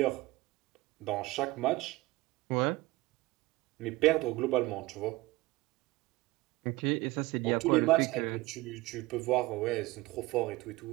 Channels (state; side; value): quieter; left; 20.1 dB